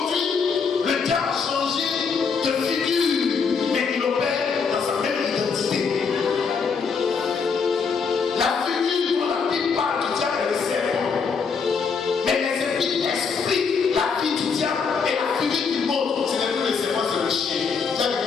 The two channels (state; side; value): quieter; right; 5.6 dB